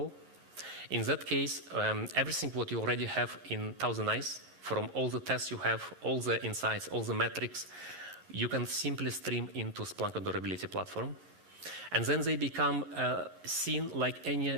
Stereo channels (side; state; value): left; late; 11 ms